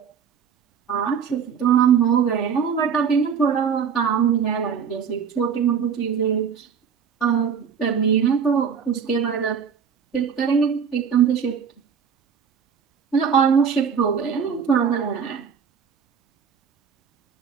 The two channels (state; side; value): quieter; left; 7.0 dB